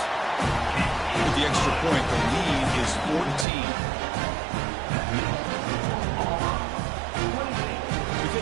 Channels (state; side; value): drops out; left; at 3.5 s